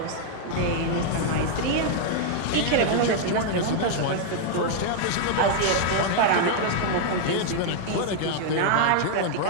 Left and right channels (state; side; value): different; both; correlation 0.00